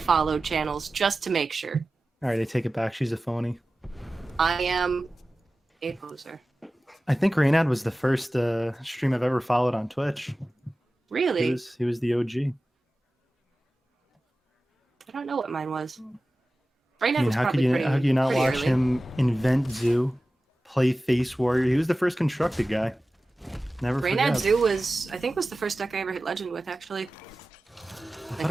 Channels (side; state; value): both; normal; correlation 0.96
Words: channels just to make sure. All right, I take it back. She's a phony. I am a poser. I think Reynad was the first stream I've ever followed on Twitch. Really? He was the OG. I don't know what mine was. Reynad I mean, was how could probably you not pretty watch early. him invent Zoo, play Face Warrior? He was the first constructed guy. Never Reynad forget. Zoo was the first deck I ever hit Legend with, actually. I Like thought